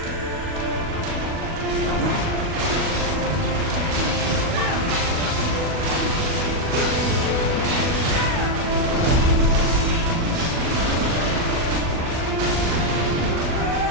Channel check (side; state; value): left; late; 39 ms